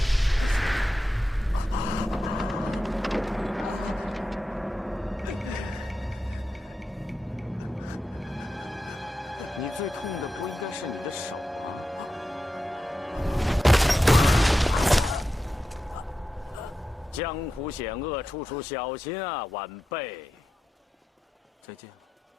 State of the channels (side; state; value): both; normal; correlation 0.90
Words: 你最痛的不应该是你的手吗？江湖险恶，处处小心啊，晚辈。再见了，